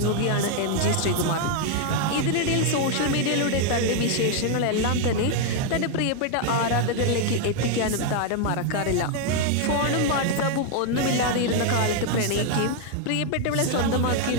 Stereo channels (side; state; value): both; different; correlation 0.01